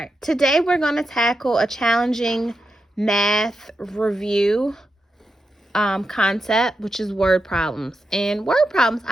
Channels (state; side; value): normal; both; correlation 0.87